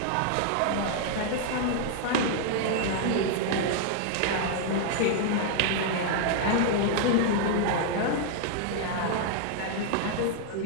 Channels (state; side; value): different; both; correlation 0.00